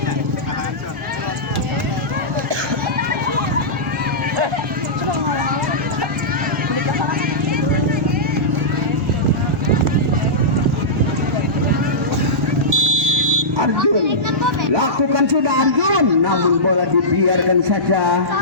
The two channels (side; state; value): both; normal; correlation -0.15